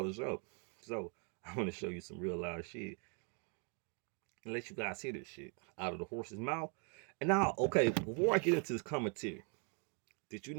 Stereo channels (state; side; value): quieter; left; 39.5 dB